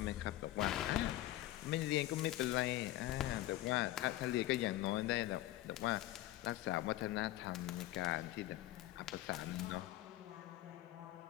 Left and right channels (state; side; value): quieter; right; 15.6 dB